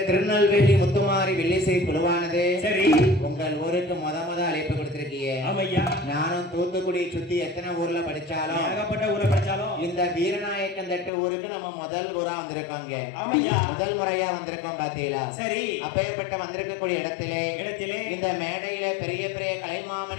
திருநெல்வேலி முத்துமாரி வில்லிசை குழுவானது சரி உங்கள் ஊருக்கு முத அழைப்பு கொடுத்திருக்கீங்க. ஆமையா நானும் தூத்துக்குடி சுத்தி எத்தனை ஊர்ல படிச்சாலும் ஏகப்பட்ட ஊர்ல படிச்சாலும் இந்த வீரநாயக்கன் தட்டு ஊருக்கு நம்ம முதல் ஊரா வந்திருக்கோங்க. ஆமையா முதல் முறையா வந்திருக்கோம் பாத்தீங்களா. சரி அப்பேற்பட்ட வந்திருக்கக்கூடிய இடத்திலே இந்த மேடையில பெரிய பெரிய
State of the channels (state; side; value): drops out; right; at 11.1 s